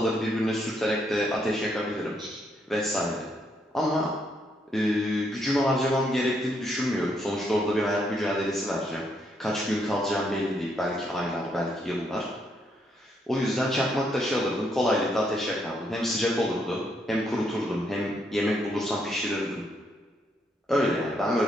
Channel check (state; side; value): normal; both; correlation 0.74